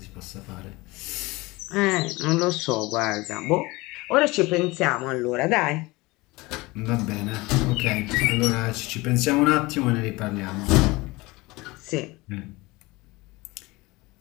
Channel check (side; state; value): right; quieter; 22.3 dB